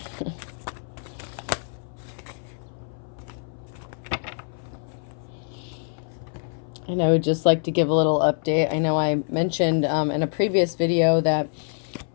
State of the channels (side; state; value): right; silent; 59 dB below the other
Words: And I would just like to give a little update. I know I mentioned in a previous video that